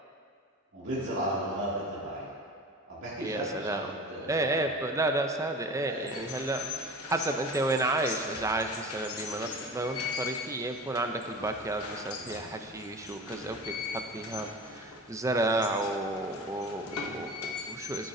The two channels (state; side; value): normal; both; correlation 0.34